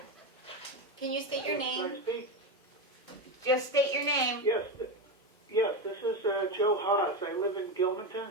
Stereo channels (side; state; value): both; normal; correlation 0.15